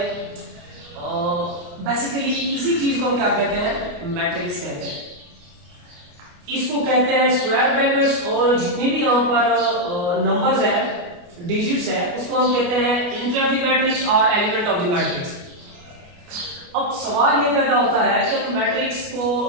बेसिकली इसी चीज को हम क्या कहते हैं मैट्रिक्स कहते हैं। इसको कहते हैं स्क्वायर ब्रैकेट्स और जितने भी यहाँ पर नंबर्स है डिजिट्स है उसको हम कहते हैं इंटर ऑफ द मैट्रिक्स और एलिमेंट ऑफ द मैट्रिक्स। अब सवाल ये पैदा होता है कि मैट्रिक्स को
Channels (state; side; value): late; left; 28 ms